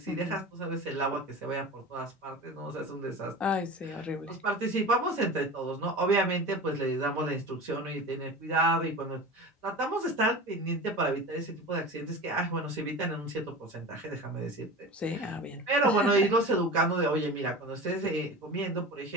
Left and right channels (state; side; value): normal; both; correlation 0.32